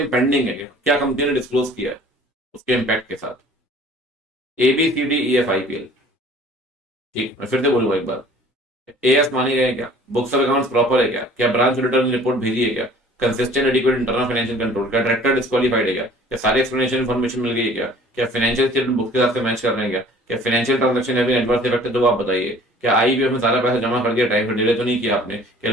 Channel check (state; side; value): normal; both; correlation 0.51